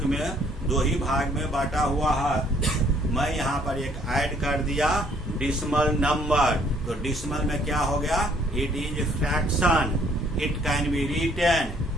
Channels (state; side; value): normal; both; correlation 0.63